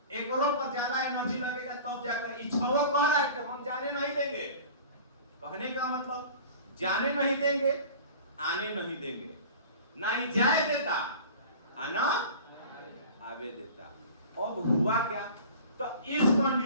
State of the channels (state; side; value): inverted; both; correlation -0.40